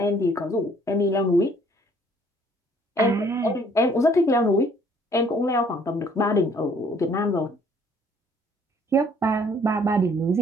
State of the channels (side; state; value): both; normal; correlation 0.60